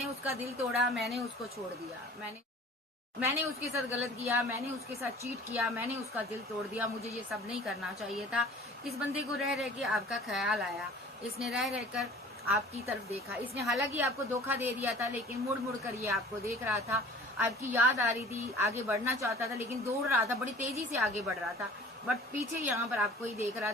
उसका दिल तोड़ा, मैंने उसको छोड़ दिया, मैंने उसके साथ गलत किया, मैंने उसके साथ चीट किया, मैंने उसका दिल तोड़ दिया, मुझे ये सब नहीं करना चाहिए था। इस बंदे को रह रह के आपका ख्याल आया, इसने रह रहकर आपकी तरफ देखा। इसने हालांकि आपको धोखा दे दिया था, लेकिन मुड़ मुड़ कर ये आपको देख रहा था, आपकी याद आ रही थी, आगे बढ़ना चाहता था, लेकिन दौड़ रहा था, बड़ी तेजी से आगे बढ़ रहा था, बट पीछे यहाँ पर आपको ही देख रहा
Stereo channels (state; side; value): normal; both; correlation 0.47